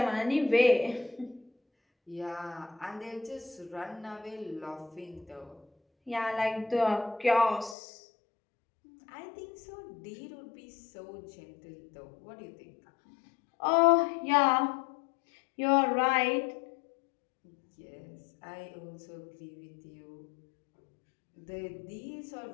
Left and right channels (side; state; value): right; drops out; at 7.8 s